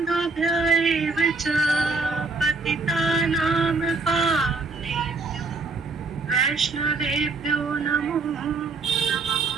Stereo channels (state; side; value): quieter; left; 3.9 dB